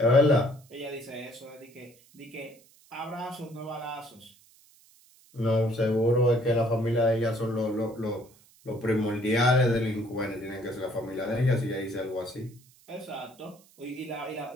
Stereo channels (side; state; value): right; noise; hiss, 28 dB below the sound